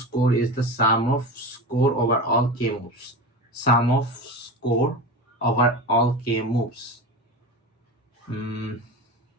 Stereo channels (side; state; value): both; normal; correlation 0.26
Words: is the sum of score over all k moves. Sum of score over all k moves. I'm